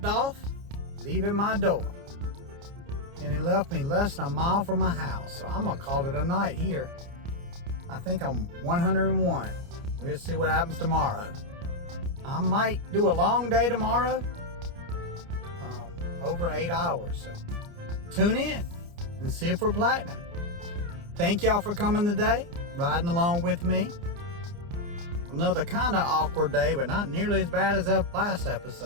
off, leaving my door. And it left me less than a mile from my house. So I'm gonna call it a night here. I think I'm 101. We'll see what happens tomorrow. I might do a long day tomorrow, over 8 hours. So tune in and see if we're platinum. Thank y'all for coming today, riding along with me. Another kind of awkward day, but not nearly as bad as that last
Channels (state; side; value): late; left; 29 ms